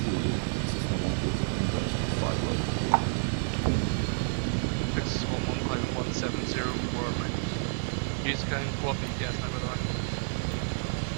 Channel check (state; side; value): silent; left; 58 dB below the other